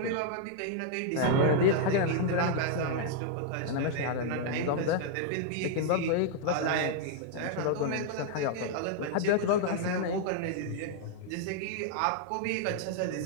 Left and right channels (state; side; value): different; both; correlation -0.01